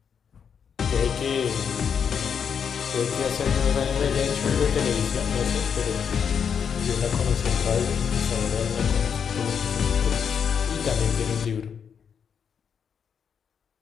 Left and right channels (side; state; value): right; quieter; 7.2 dB